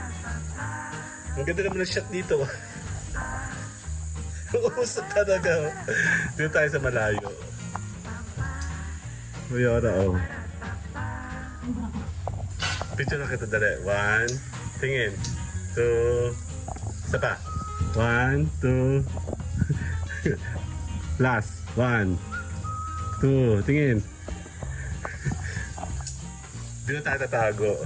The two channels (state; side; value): identical; both; correlation 1.00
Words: Ang ganda naman ng shot dito. Usok talaga. Dito tayo sa malayo. Mayora, oh. Picture na kita, dali. 1, tingin. 2, isa pa. 1, 2. Last. 1, 2, tingin. Dito tayo tatago.